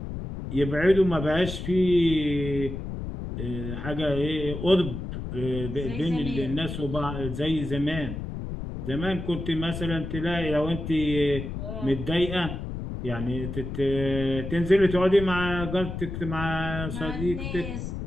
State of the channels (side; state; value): left; noise; rumble, 6 dB below the sound